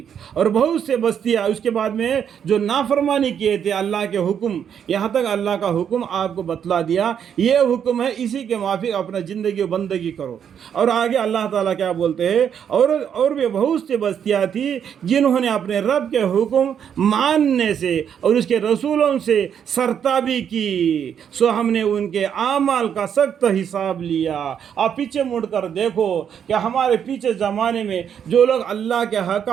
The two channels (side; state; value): left; quieter; 8.3 dB